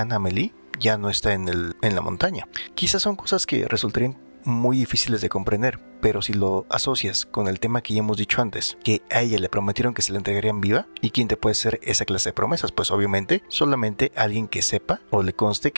Amélie ya no está en la montaña. Quizás son cosas que resultarían muy difíciles de comprender, pero si lo asocias con el tema que ya hemos dicho antes, que a ella le prometieron que se la entregarían viva, ¿y quién te puede hacer esa clase de promesas? Pues obviamente solamente alguien que sepa o le conste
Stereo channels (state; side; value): inverted; both; correlation -1.00